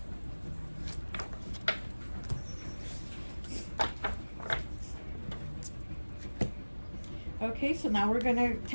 Okay, so now we're going to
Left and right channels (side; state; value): both; inverted; correlation -1.00